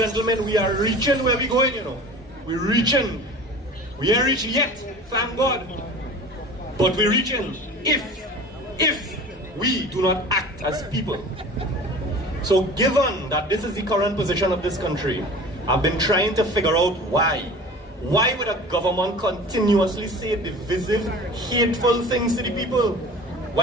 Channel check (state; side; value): normal; both; correlation 0.40